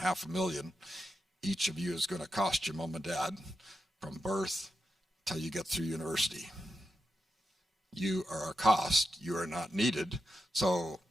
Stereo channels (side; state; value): both; normal; correlation 0.86